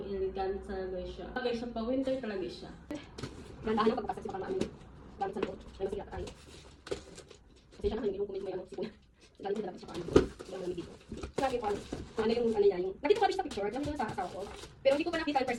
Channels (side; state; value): both; identical; correlation 1.00